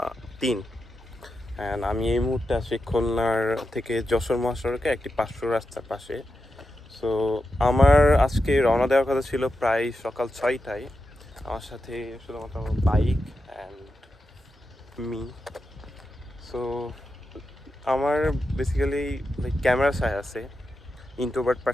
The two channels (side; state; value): both; normal; correlation 0.89